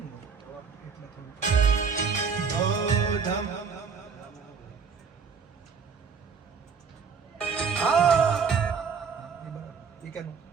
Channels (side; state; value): left; quieter; 5.8 dB